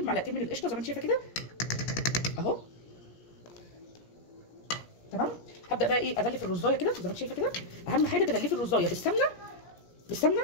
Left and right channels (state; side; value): late; right; 17 ms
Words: معلقتين من القشطه زي ما انت شايفه كده اهو تمام. هبدا بقى ايه اغلف الرزايه كده زي ما انت شايفه كده. اهم حاجه تغلفي الرزايه بالسمنه